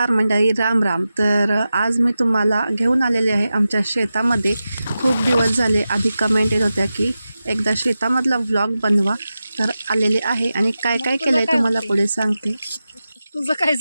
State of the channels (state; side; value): inverted; both; correlation -0.93